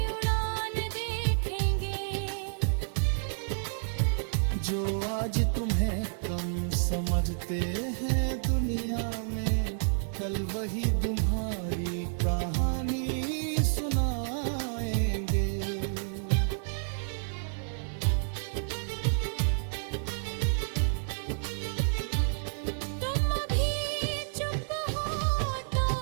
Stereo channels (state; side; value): silent; left; digital silence